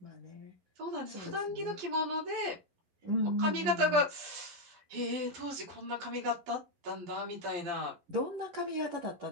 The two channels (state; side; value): late; left; 11 ms